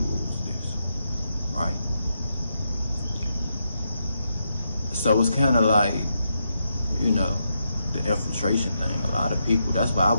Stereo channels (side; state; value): both; inverted; correlation -0.82